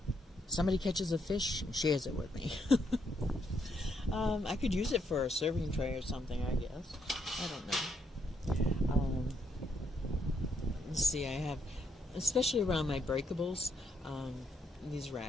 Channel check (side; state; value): both; normal; correlation 0.75